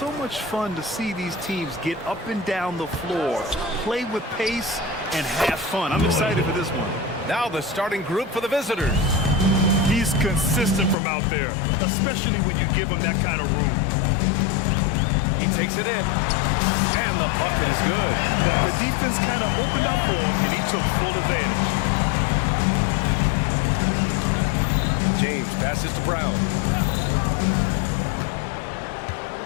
much fun to see these teams get up and down the floor, play with pace, and have fun. I'm excited for this one. Now the starting group for the visitors. He's consistent from out there, especially when you give him that kind of room. He takes it in, and the bucket is good. The defense kind of opened up for him, and he took full advantage. James passes to Brown.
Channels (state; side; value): drops out; right; at 11.0 s